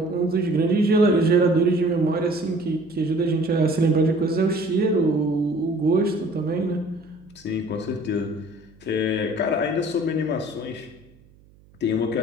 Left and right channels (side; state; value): right; noise; hum, 28 dB below the sound